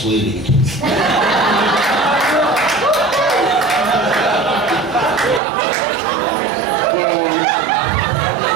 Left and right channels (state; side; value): drops out; left; at 5.4 s